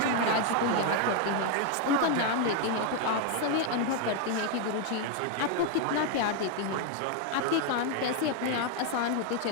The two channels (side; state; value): both; different; correlation 0.01